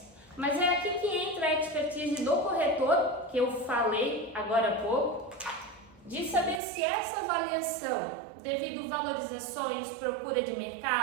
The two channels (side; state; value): left; drops out; at 6.6 s